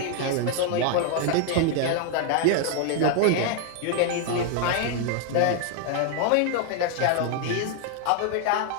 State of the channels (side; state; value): both; different; correlation 0.00